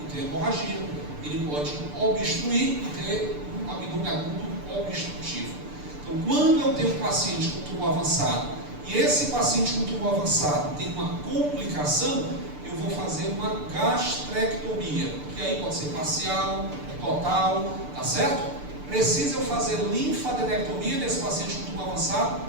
e ter hemorragia. Ele pode obstruir e ter um abdômen agudo obstrutivo. Então, quando eu tenho um paciente com tumor avançado e esse paciente com tumor avançado tem uma complicação, eu vou fazer uma gastrectomia, que aí pode ser parcial, total, tá certo? Precisa eu fazer linfadenectomia nesse paciente com tumor avançado?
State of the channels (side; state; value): left; late; 6.8 ms